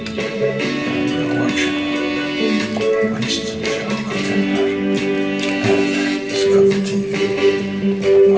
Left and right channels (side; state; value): left; noise; rumble, 29 dB below the sound